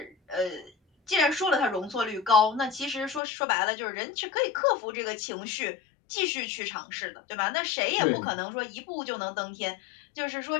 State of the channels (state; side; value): drops out; right; at 3.2 s